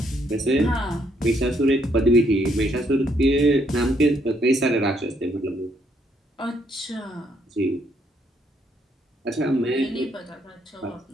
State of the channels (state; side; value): normal; both; correlation 0.72